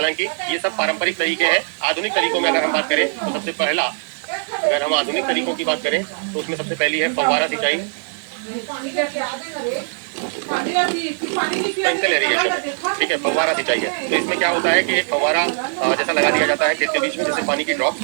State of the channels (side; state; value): left; silent; digital silence